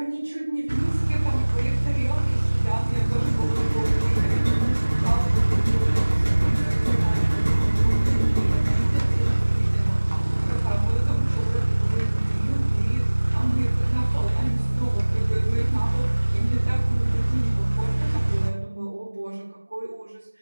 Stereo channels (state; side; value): inverted; both; correlation -1.00